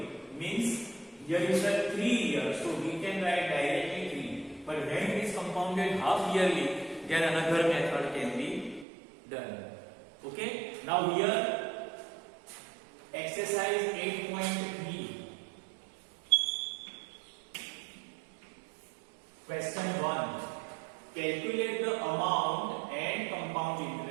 means here is the 3 years, so we can write directly 3. But when it is compounded half yearly, then another method can be done. Okay, now here exercise 8.3. Question 1. Calculate the amount and compound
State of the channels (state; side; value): drops out; left; at 8.8 s